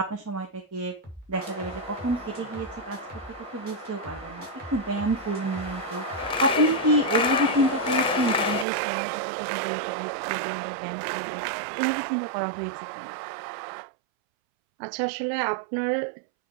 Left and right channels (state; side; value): drops out; left; at 8.7 s